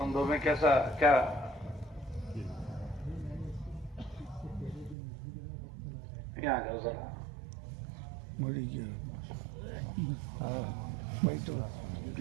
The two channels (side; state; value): left; drops out; at 5.0 s